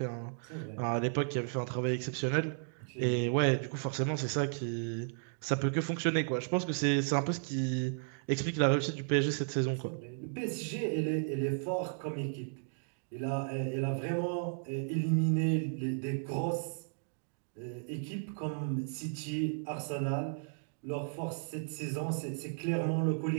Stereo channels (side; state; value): left; silent; digital silence